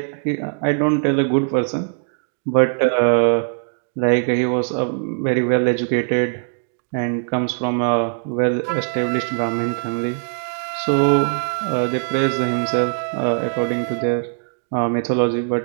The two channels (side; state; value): left; silent; digital silence